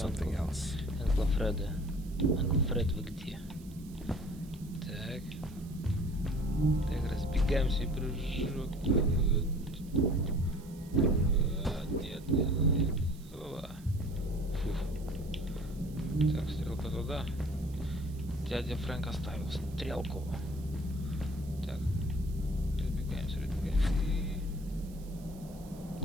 else? Анкл Фред, вы где? Так. Так, разбегаемся и прыжок. Нет. Так, стрелка туда. Дядя Фрэнк оставил стрелку. Так. Разбегаемся.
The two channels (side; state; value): right; noise; hiss, 24 dB below the sound